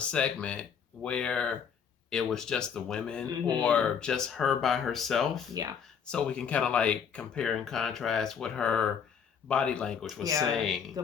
where it was just the women or just her by herself. Yeah. So we can kind of like compare and contrast what her body language was saying.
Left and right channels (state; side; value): quieter; right; 7.1 dB